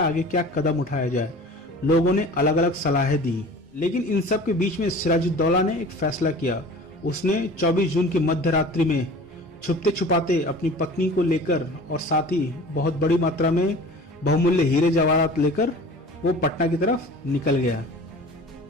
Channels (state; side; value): normal; both; correlation 0.42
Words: आगे क्या कदम उठाया जाए। लोगों ने अलग अलग सलाहें दी, लेकिन इन सब के बीच में सिराजुद्दौला ने एक फैसला किया। उसने 24 जून की मध्य रात्रि में छुपते छुपाते अपनी पत्नी को लेकर और साथ ही बहुत बड़ी मात्रा में बहुमूल्य हीरे जवाहरात लेकर वो पटना की तरफ निकल गया।